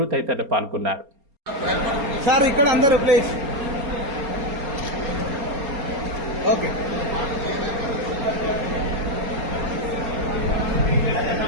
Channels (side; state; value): left; late; 4.3 ms